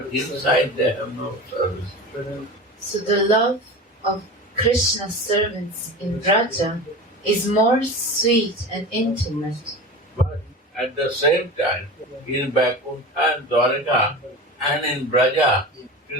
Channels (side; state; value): both; normal; correlation 0.30